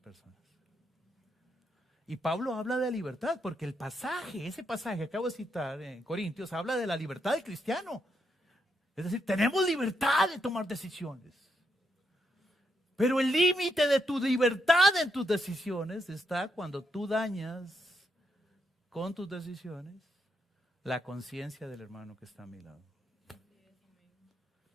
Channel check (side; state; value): both; normal; correlation 0.80